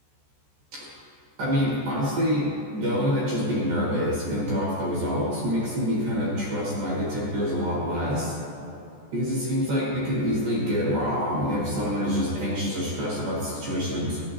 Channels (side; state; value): left; late; 14 ms